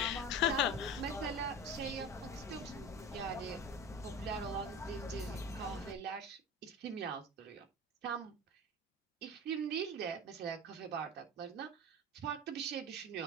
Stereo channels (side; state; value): both; normal; correlation 0.31